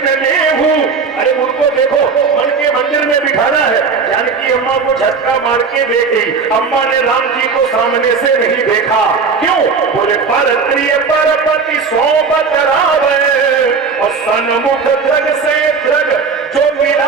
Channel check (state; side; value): quieter; left; 5.2 dB